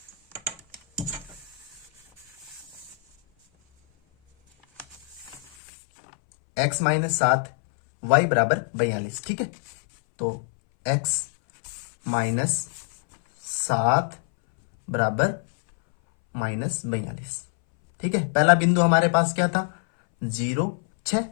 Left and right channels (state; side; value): drops out; right; at 5.4 s